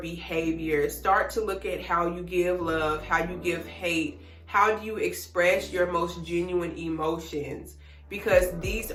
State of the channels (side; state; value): both; identical; correlation 1.00